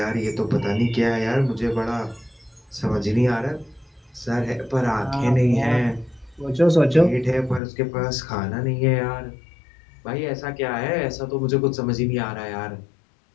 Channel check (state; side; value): drops out; right; at 7.6 s